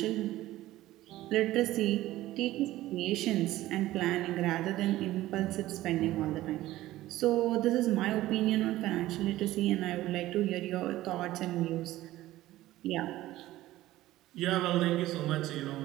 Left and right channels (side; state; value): left; quieter; 15.8 dB